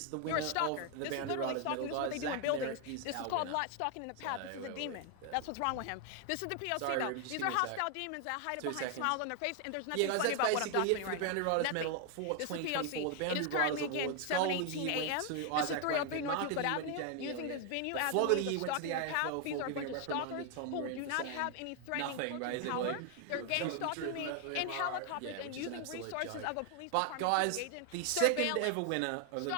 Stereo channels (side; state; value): both; different; correlation 0.00